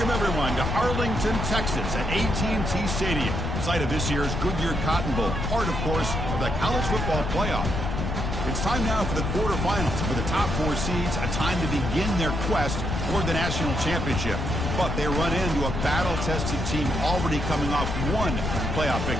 Welcome, everyone, to Arlington, Texas at AT&T Stadium, site of this year's Goodyear Cotton Bowl, part, of course, of the college football playoff. It's time now for the quarterfinals. For the top 4 seeds, a time to begin their quest toward the national championship. But they run into a battle-tested team already coming off one playoff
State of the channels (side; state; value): left; noise; rumble, 2 dB below the sound